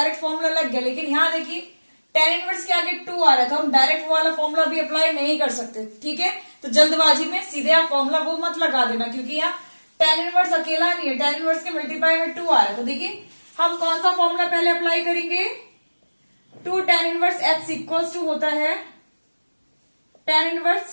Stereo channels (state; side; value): inverted; both; correlation -1.00